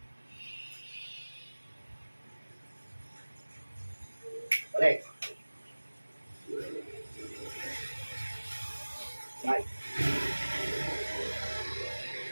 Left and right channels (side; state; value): both; inverted; correlation -1.00